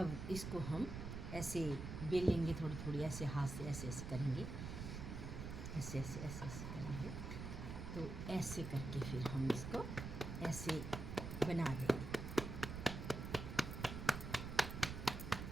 इसको हम ऐसे बेलेंगे, थोड़ी थोड़ी ऐसे हाथ से ऐसे ऐसे करेंगे, ऐसे ऐसे ऐसे ऐसे करेंगे। तो ऐसे करके फिर हम इसको ऐसे बना देंगे।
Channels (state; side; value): noise; right; rumble, 6 dB below the sound